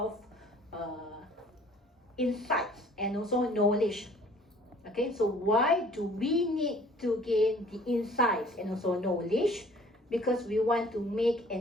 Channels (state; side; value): normal; both; correlation 0.54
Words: insights and also knowledge. Okay, so why do we need to gain the insights and also knowledge? Because we want to make